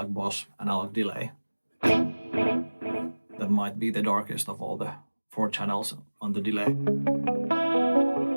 Boss analog delay. That might be the darkest of all the 4 channels on the delay.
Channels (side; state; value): both; inverted; correlation -1.00